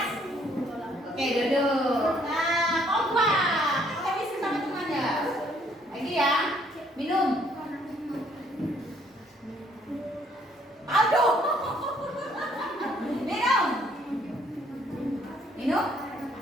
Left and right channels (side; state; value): both; normal; correlation 0.65